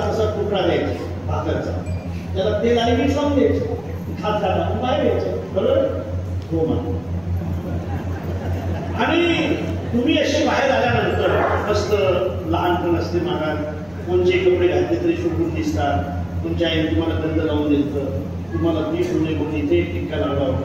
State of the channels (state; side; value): noise; right; rumble, 26 dB below the sound